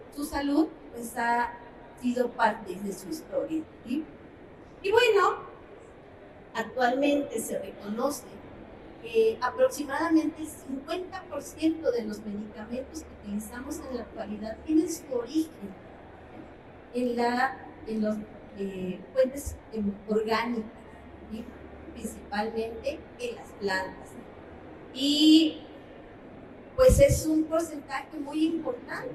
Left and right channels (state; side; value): identical; both; correlation 1.00